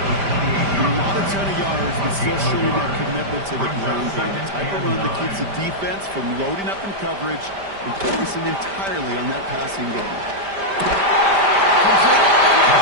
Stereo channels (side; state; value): left; late; 5.1 ms